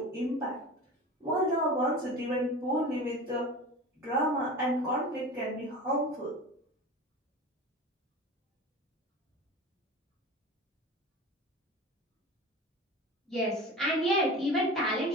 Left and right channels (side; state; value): both; normal; correlation 0.33